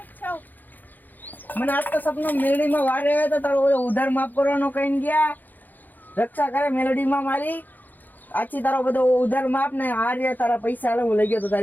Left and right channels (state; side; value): late; right; 0.085 ms